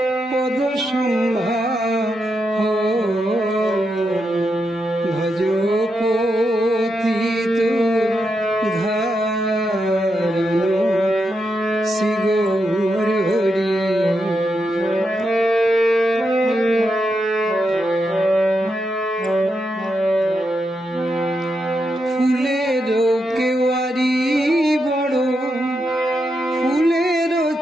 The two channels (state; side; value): normal; both; correlation 0.84